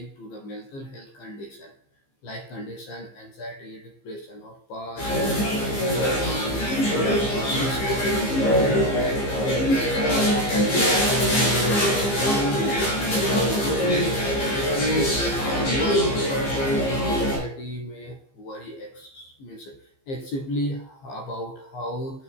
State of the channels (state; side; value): late; right; 15 ms